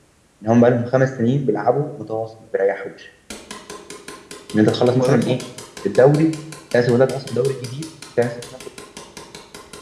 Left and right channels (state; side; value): identical; both; correlation 1.00